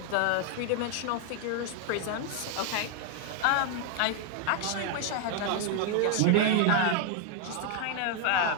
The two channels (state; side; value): different; both; correlation 0.00